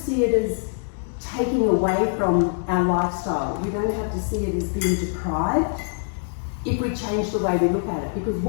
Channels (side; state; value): right; silent; digital silence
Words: it as taking away from our lifestyle. We don't have to see it as being deprived if we change the way we look at it. Because